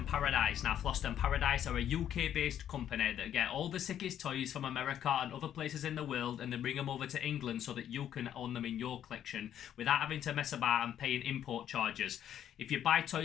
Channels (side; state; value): right; quieter; 10.3 dB